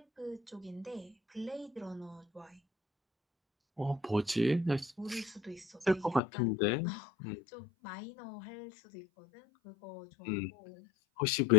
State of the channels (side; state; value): right; drops out; at 6.2 s